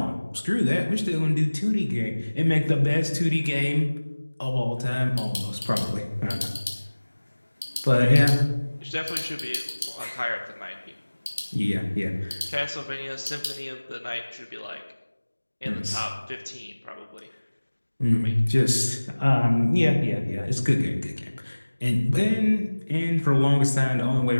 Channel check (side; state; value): both; inverted; correlation -1.00